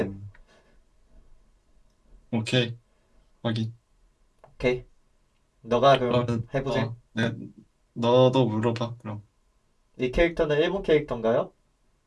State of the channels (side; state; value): both; identical; correlation 1.00